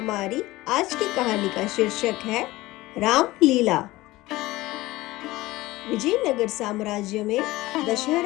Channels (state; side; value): quieter; right; 18.8 dB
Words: आज की कहानी का शीर्षक है रामलीला। विजयनगर साम्राज्य में